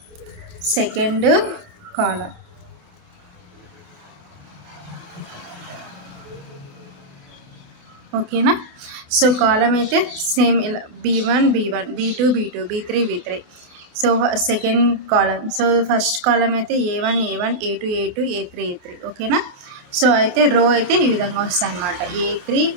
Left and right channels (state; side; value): late; left; 29 ms